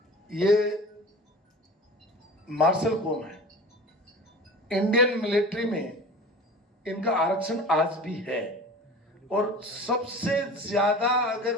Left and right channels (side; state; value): both; normal; correlation 0.38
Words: ये मार्शल कौम है, इंडियन मिलिट्री में इनका आरक्षण आज भी है, और सबसे ज्यादा